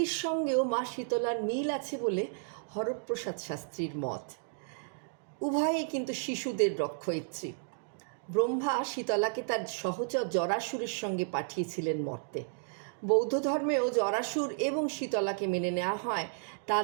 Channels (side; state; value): left; silent; digital silence